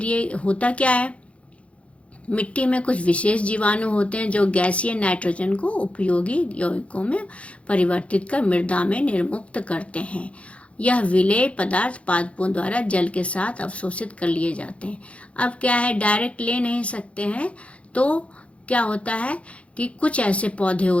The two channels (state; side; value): late; right; 0.062 ms